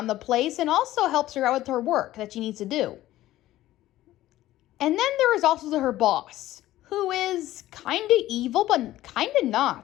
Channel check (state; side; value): quieter; right; 15.1 dB